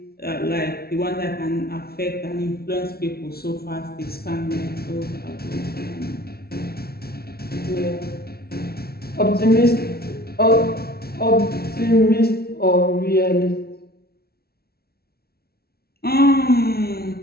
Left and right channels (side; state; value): right; late; 0.45 ms